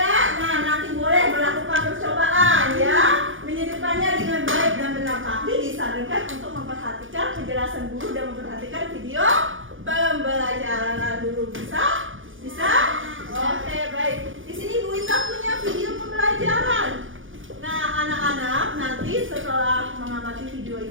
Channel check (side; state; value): left; late; 0.58 ms